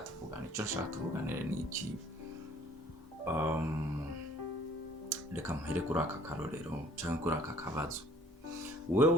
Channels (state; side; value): normal; both; correlation 0.56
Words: ico nshaka tuvuganire ni iki reka muhere kuri aka karorero cyangwa kuri aka kabazo